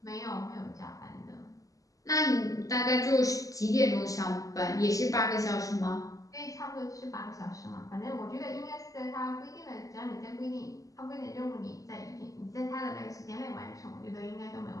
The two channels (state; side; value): late; right; 0.17 ms